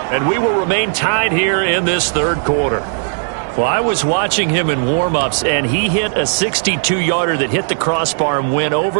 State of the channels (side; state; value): left; silent; 69 dB below the other